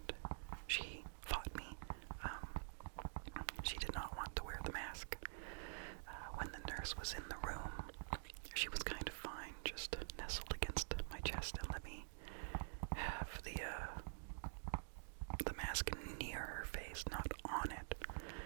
she fought me. She did not want to wear the mask. When the nurse was in the room, she was kind of fine, just nestled against my chest and let me have the mask near her face, not on it.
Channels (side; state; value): left; silent; digital silence